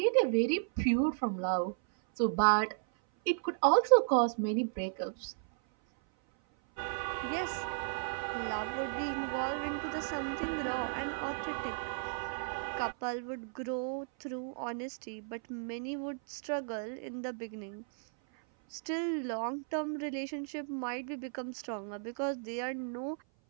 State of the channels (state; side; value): silent; left; 55 dB below the other